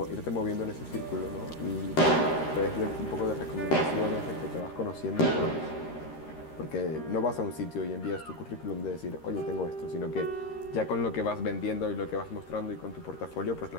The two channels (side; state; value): right; late; 13 ms